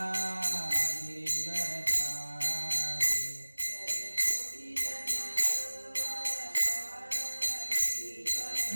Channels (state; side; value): inverted; both; correlation -1.00